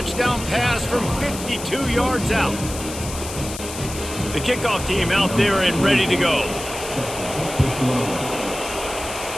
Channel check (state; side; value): noise; left; hiss, 10 dB below the sound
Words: pass from 52 yards out. The kickoff team out there and ready to go.